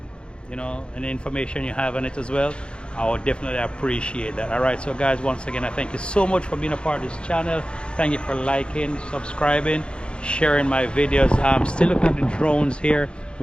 know, any information you have on it as well. I would definitely appreciate that. All right, so guys, once again, I thank you so much for being a part of this channel. Thank you for liking, subscribing, sharing my videos. I'm still looking at the drones here,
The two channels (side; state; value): right; late; 0.054 ms